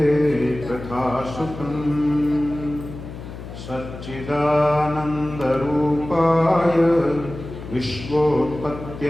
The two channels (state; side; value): noise; left; hum, 12 dB below the sound